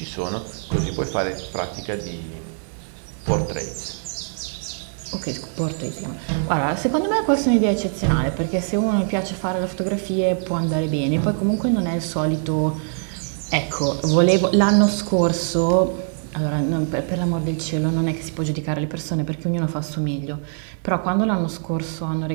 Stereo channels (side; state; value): left; silent; digital silence